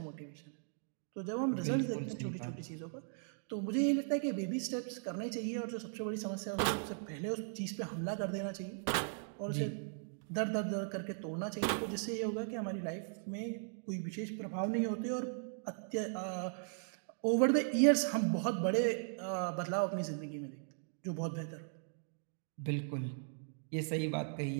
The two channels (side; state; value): left; silent; digital silence